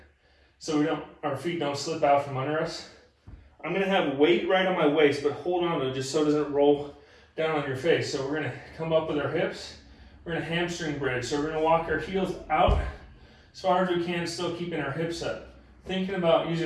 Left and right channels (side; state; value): both; identical; correlation 1.00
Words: so our feet don't slip out from under us. I'm gonna have weight right on my waist, but hold on to it just so it doesn't roll down on your face. So we're gonna come up with our hips. We're gonna hamstring bridge. So we're gonna walk our heels out as far as we can, still keeping our hips up. Thinking about